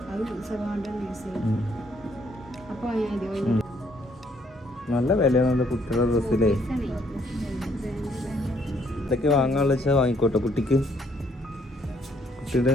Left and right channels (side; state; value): both; normal; correlation 0.68